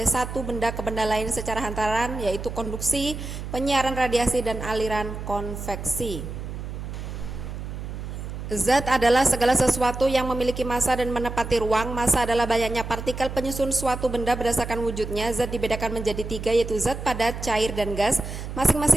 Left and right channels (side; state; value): right; noise; hum, 8 dB below the sound